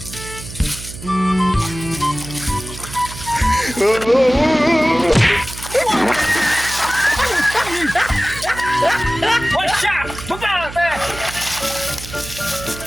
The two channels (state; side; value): noise; right; hum, 13 dB below the sound